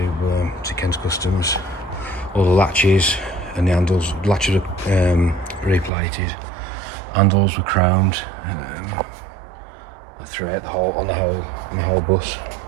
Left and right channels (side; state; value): left; drops out; at 5.9 s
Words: Ken's Customs. All the latches and the handles, latches are replated, handles were chromed throughout the whole bus.